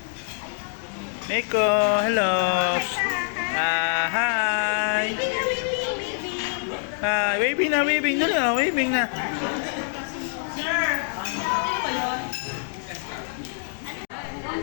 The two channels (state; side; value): silent; right; 62 dB below the other